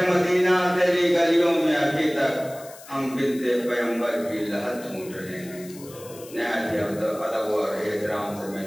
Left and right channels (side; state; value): left; noise; hiss, 19 dB below the sound